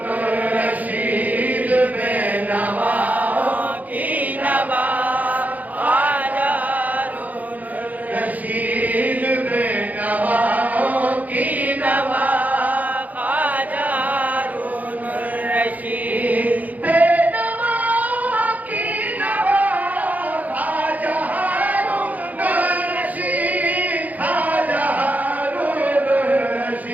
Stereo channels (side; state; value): left; late; 0.078 ms